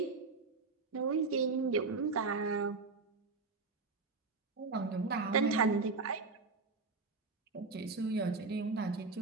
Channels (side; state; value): left; quieter; 4.2 dB